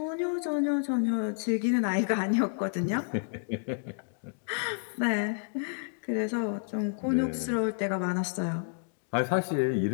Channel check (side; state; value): right; silent; digital silence